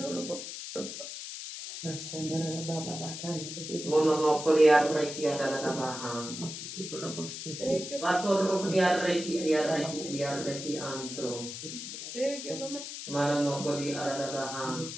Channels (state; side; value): noise; left; hiss, 8 dB below the sound